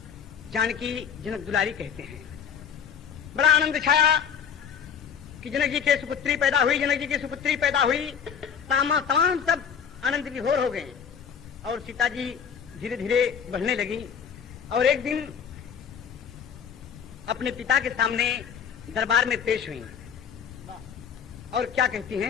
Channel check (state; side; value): quieter; right; 7.5 dB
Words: जानकी जनक दुलारी कहते हैं। बड़ा आनंद छाया कि जनक जी के सुपुत्री पैदा हुई, जनक जी की सुपुत्री पैदा हुई। तमाम सब आनंद विभोर हो गए और सीता जी धीरे धीरे बढ़ने लगी। और एक दिन अपने पिता के सामने दरबार में पेश हुई और क्या कहती